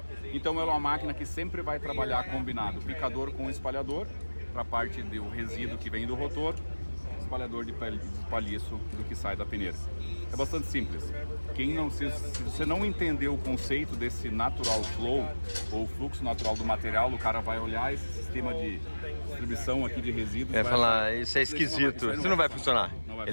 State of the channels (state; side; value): inverted; both; correlation -1.00